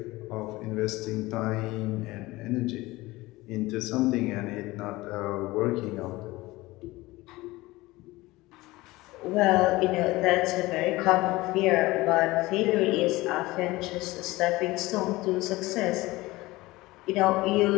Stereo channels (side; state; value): right; quieter; 19.9 dB